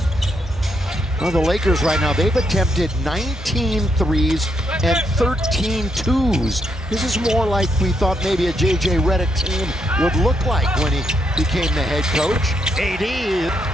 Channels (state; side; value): normal; both; correlation 0.78